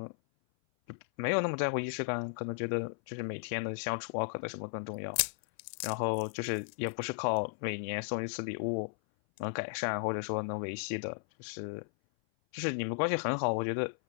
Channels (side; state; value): right; silent; 55 dB below the other